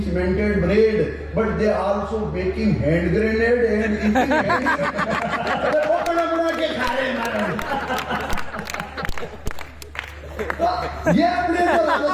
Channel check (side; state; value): both; identical; correlation 1.00